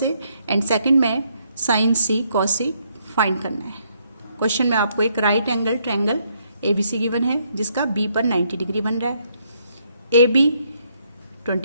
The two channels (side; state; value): both; inverted; correlation -0.72